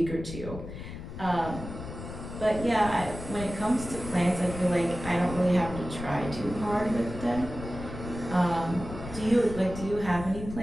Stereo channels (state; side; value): noise; left; rumble, 10 dB below the sound